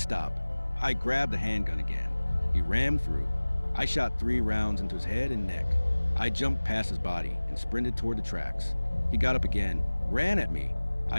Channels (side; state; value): both; inverted; correlation -1.00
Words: I grabbed the handgun again. He rammed through. I shot 3 rounds into his head and neck. I jumped past his body and sprinted toward the tracks. He got up again, ran at me.